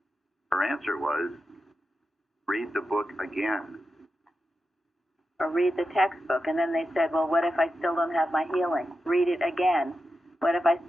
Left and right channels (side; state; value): both; normal; correlation 0.90